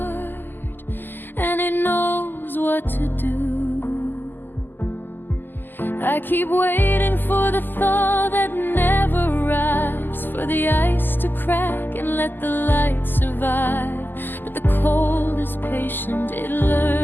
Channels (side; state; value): right; late; 0.091 ms